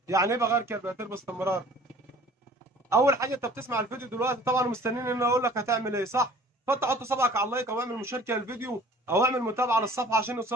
يعني إيه بغير كربيراتور باستمرار؟ أول حاجة أنت بتسمع الفيديو دلوقتي طبعا ومستنيين إن أنا أقول لك هتعمل إيه، صح؟ فأنت حط صبعك على اللايك أو اعمل مشاركة للفيديو أو اعمل متابعة للصفحة عشان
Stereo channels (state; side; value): normal; both; correlation 0.49